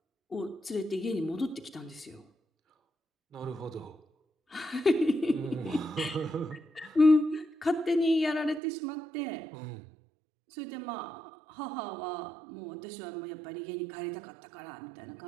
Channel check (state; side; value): drops out; left; at 8.6 s